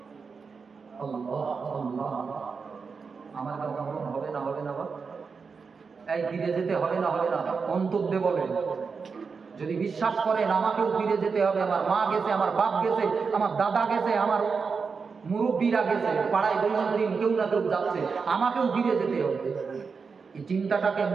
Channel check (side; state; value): left; quieter; 5.2 dB